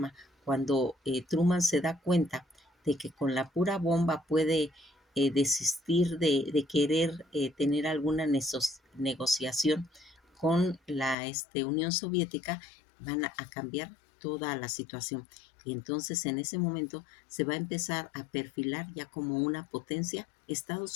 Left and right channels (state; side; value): drops out; right; at 11.2 s